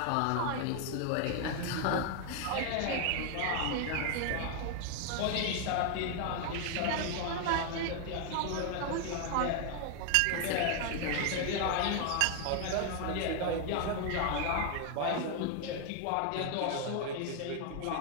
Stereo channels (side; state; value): both; different; correlation 0.00